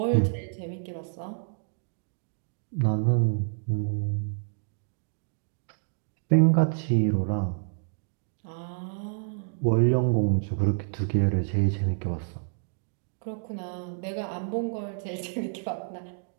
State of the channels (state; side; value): silent; left; digital silence